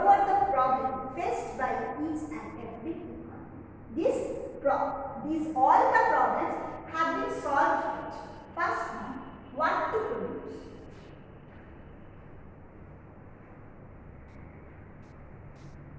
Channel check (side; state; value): both; identical; correlation 1.00